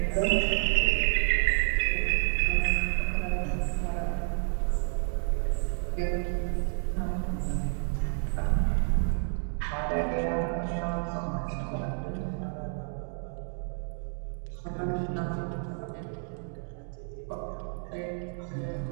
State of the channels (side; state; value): left; silent; 57 dB below the other